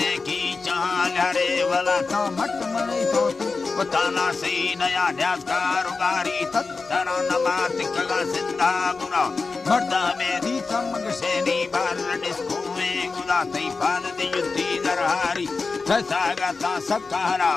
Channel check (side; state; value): right; quieter; 4.2 dB